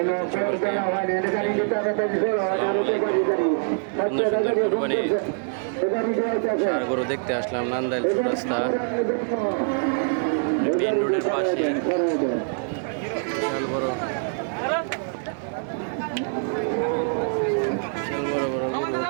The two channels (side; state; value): left; silent; 62 dB below the other